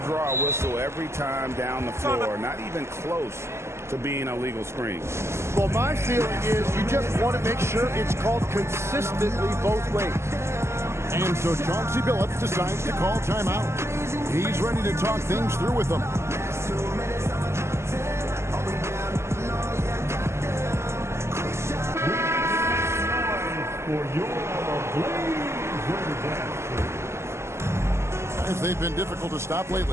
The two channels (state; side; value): late; left; 0.13 ms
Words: a whistle every time down the floor. Not even close to being a legal screen. Well, my feeling is you just want to make sure it's called consistently both ways. And so Chauncey Billups decides to call timeout. He's ready to talk things through with them. As they've been difficult to stop